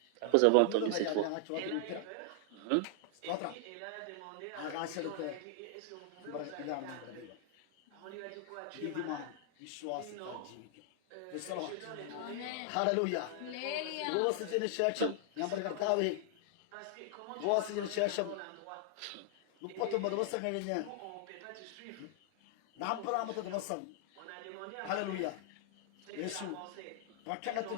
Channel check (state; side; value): different; both; correlation 0.00